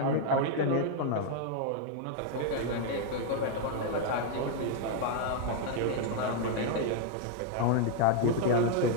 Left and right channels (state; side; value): different; both; correlation 0.00